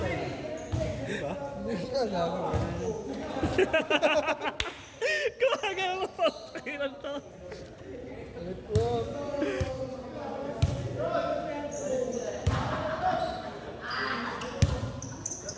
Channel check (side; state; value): both; identical; correlation 1.00